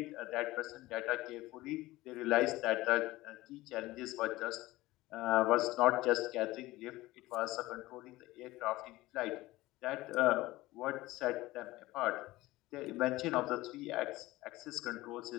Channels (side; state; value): right; quieter; 18.5 dB